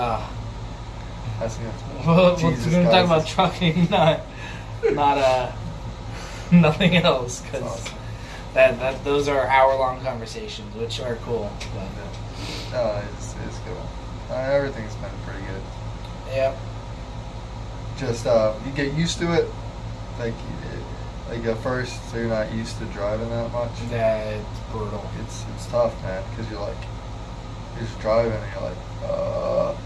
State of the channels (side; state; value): both; identical; correlation 1.00